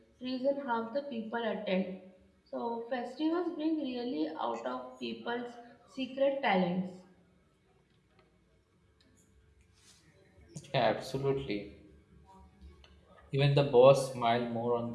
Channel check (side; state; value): both; identical; correlation 1.00